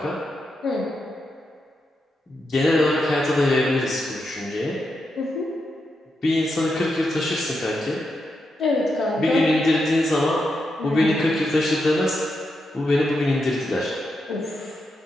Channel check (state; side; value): normal; both; correlation 0.85